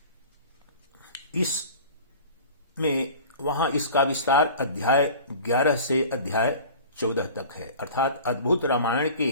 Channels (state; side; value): inverted; both; correlation -0.41